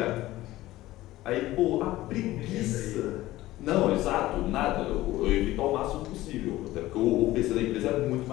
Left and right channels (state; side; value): quieter; right; 16.6 dB